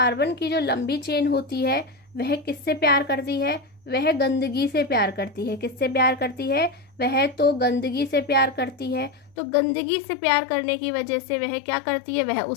की जो लंबी चेन होती है वह किससे प्यार करती है, वह गंदगी से प्यार करती है। किससे प्यार करती है, वह तो गंदगी से प्यार करती है। तो गंदगी से प्यार करने की वजह से वह क्या करती है, वह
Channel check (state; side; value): drops out; right; at 9.3 s